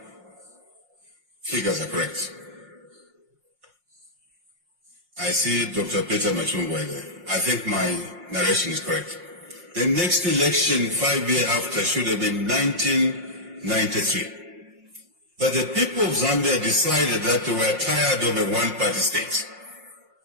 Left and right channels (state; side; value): late; left; 5.6 ms